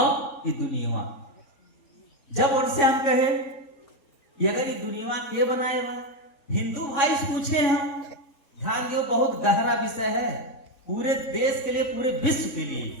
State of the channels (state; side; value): late; right; 3.6 ms